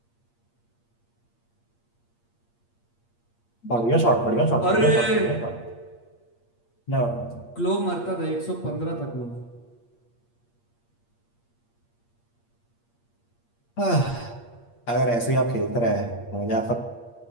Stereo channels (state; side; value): late; right; 8.6 ms